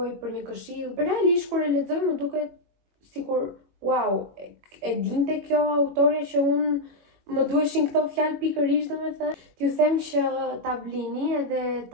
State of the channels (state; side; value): late; left; 21 ms